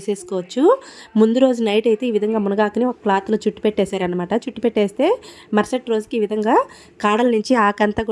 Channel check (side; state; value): both; identical; correlation 1.00